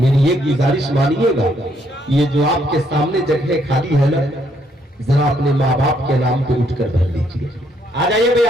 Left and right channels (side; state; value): both; normal; correlation 0.71